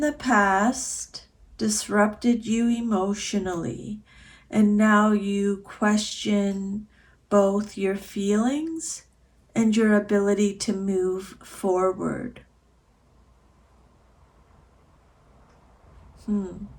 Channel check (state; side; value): identical; both; correlation 1.00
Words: past disrupted you emotionally, and now you question both your feelings and your ability to move forward.